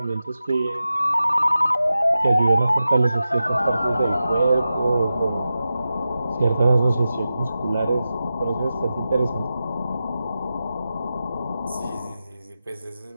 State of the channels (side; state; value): both; inverted; correlation -0.92